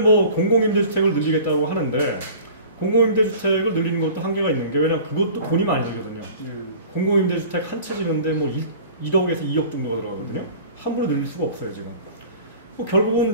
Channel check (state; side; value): inverted; both; correlation -0.44